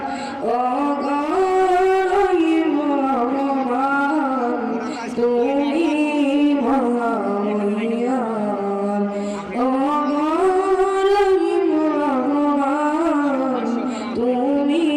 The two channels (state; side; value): identical; both; correlation 1.00